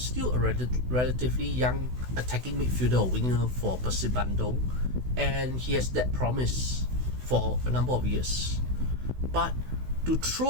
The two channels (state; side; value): late; left; 16 ms